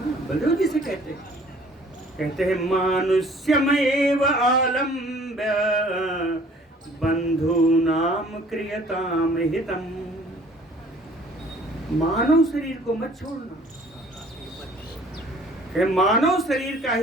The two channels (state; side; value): normal; both; correlation 0.54